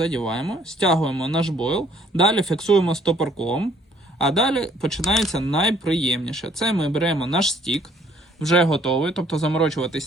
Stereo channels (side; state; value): both; normal; correlation 0.62